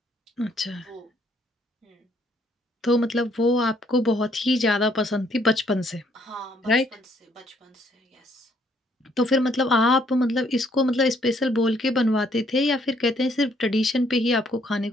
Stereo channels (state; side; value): normal; both; correlation 0.67